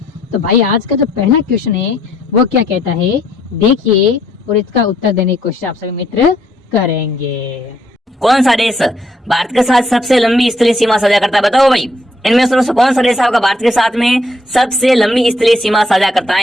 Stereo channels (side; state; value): both; normal; correlation 0.69